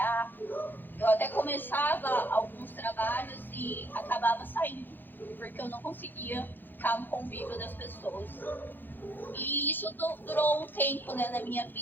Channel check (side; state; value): right; late; 0.092 ms